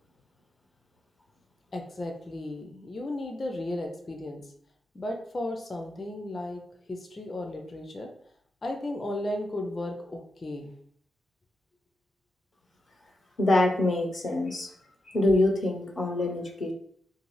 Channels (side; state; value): both; normal; correlation 0.86